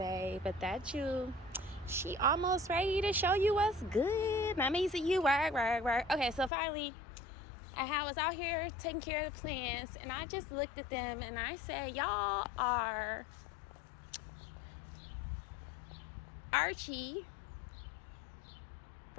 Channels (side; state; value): right; drops out; at 6.5 s